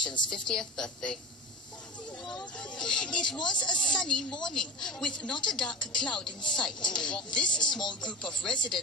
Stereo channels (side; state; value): both; normal; correlation 0.31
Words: 50th birthday. It was a sunny morning with not a dark cloud in sight. This small group of